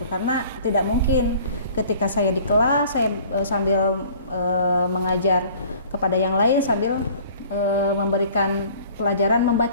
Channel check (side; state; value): both; inverted; correlation -0.50